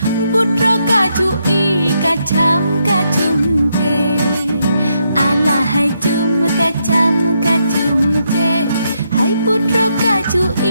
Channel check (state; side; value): inverted; both; correlation -0.79